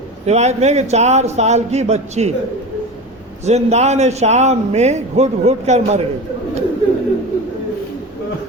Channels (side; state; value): both; normal; correlation 0.28